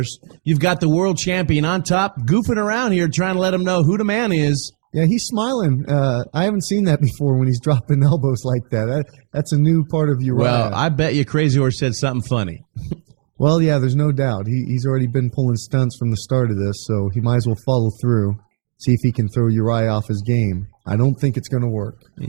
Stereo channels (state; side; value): silent; left; 65 dB below the other